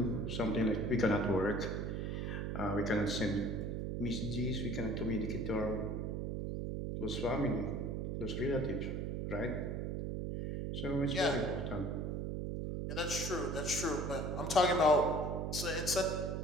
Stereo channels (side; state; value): right; noise; hum, 2 dB below the sound